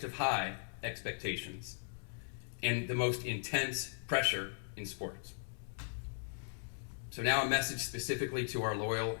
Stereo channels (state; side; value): silent; right; digital silence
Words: of high expectations and the most intense pressure in sports. So now a message specifically to our loyal